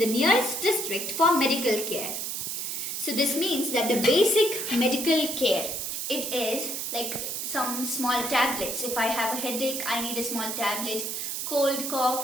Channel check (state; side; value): noise; right; hiss, 3 dB below the sound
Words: nearest district for medical care. So this means that the basic medical care, it is like some small tablets. If I have a headache, I need a small tablet. Cold,